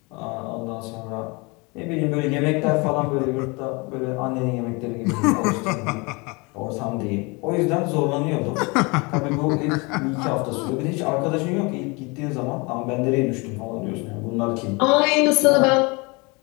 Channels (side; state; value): right; quieter; 27.9 dB